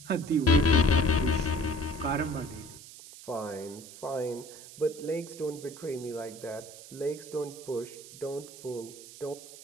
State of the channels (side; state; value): right; noise; hiss, 16 dB below the sound